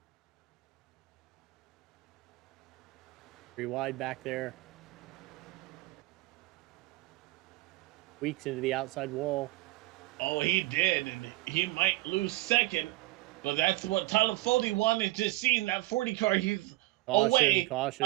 3 wide back there. Weeks into the outside wall. Oh, he did, and he might lose second, but that's what Tyler Foley wanted to see in that 40 car. He's away.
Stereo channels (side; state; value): left; quieter; 19.8 dB